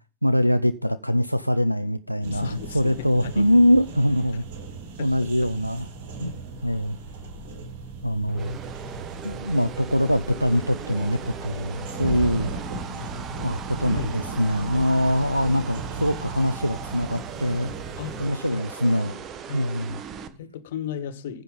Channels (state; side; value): inverted; both; correlation -0.90